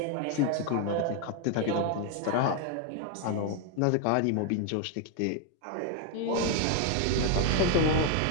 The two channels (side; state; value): both; different; correlation 0.00